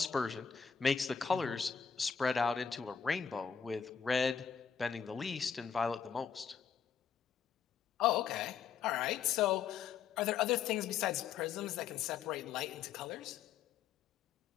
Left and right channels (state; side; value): quieter; right; 7.1 dB